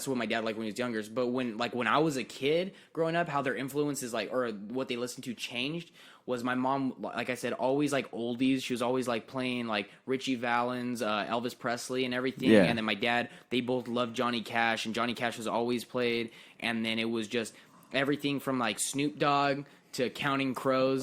what my dad liked when he was younger. But when I was a kid growing up, how their influences like or what they listened to changed was my mom, like I said, always like oldies. She was always like playing like Richie Valens, Elvis Presley, and everything. Yeah. And then my dad, they both loved Johnny Cash, and Johnny Cash was always played. And then it was just everything from like Snoop Dogg to Counting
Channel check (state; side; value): identical; both; correlation 1.00